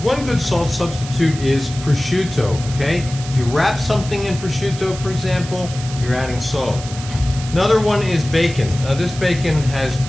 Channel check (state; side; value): noise; right; hiss, 13 dB below the sound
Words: One good salt substitute is prosciutto, okay? If you wrap something in prosciutto, for example, you're adding salt. Another one is bacon. This bacon has